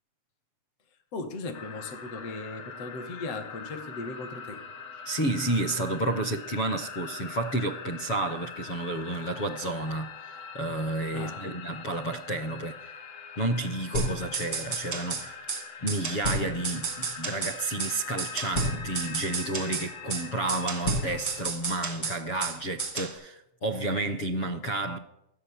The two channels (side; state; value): right; late; 7.2 ms